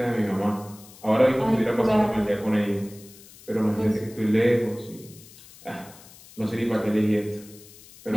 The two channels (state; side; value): noise; left; hiss, 21 dB below the sound